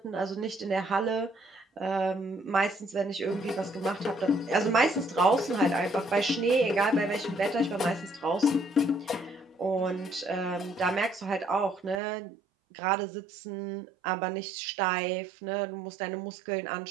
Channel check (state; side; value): drops out; left; at 12.0 s